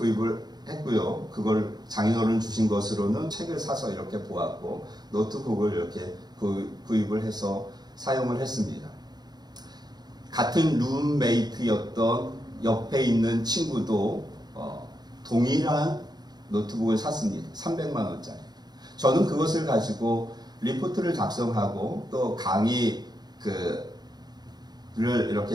했고요. 그걸 장인어른 주신 것으로는 책을 사서 이렇게 보았고, 노트북을 이렇게 구입을 해서 사용을 했습니다. 같은 룸메이트였던 옆에 있는 친구도 동일한 노트북을 샀습니다. 300만 원짜리. 저는 그것을 가지고 리포트를 작성하고 또 강의를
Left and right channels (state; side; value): late; left; 0.20 ms